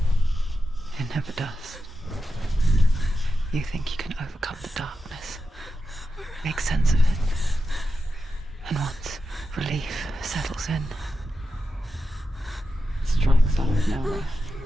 It never does. You think you can overcome the darkness, make sense of it, and once relief settles in, it strikes out of nowhere,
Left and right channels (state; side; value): normal; both; correlation 0.89